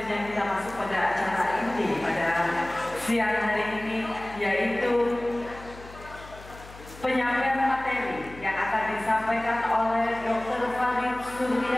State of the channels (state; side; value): noise; left; hum, 18 dB below the sound